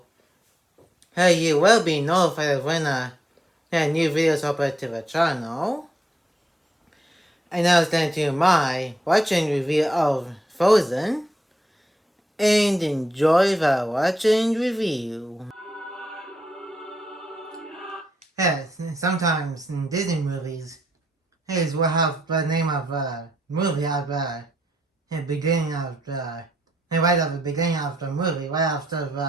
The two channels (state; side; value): normal; both; correlation 0.79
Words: you will be notified when a new videos upload to the channel. And now it's time to my watching review of Frozen, and enjoy the watching review. Yes, sometimes in Disney movies, we'll have the name of the movie at the beginning of right at the beginning of the movie, right after